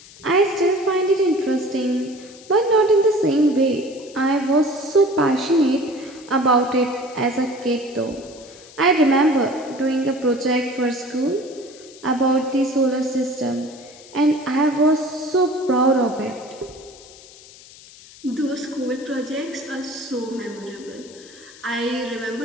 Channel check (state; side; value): noise; left; hiss, 21 dB below the sound